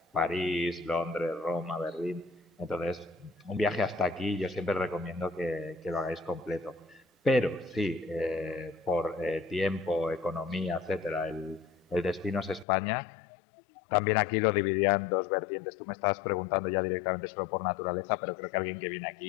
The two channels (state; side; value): drops out; right; at 12.7 s